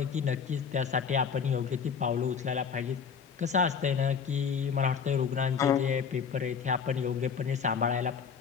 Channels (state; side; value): quieter; right; 6.5 dB